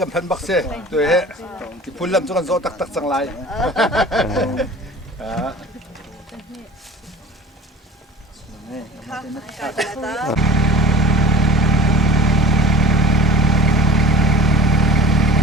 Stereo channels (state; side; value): normal; both; correlation 0.42